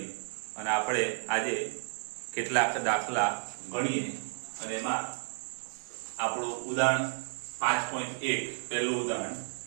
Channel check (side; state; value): left; silent; 56 dB below the other